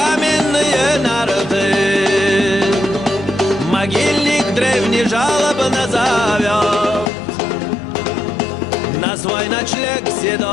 нарты. Могильник древний жалобно зовет на свой ночлег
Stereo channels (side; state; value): right; drops out; at 7.1 s